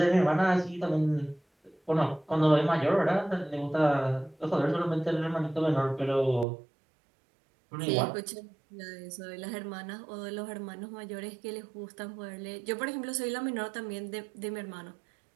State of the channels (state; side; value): drops out; left; at 6.5 s